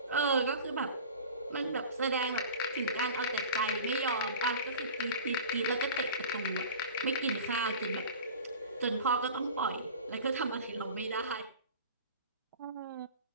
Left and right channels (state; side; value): inverted; both; correlation -0.38